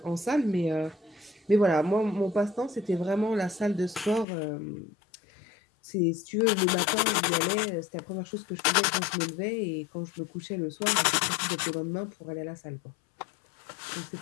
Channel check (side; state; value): right; drops out; at 4.2 s